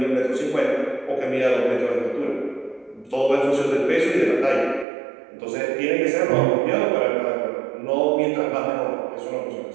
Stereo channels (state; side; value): drops out; left; at 4.9 s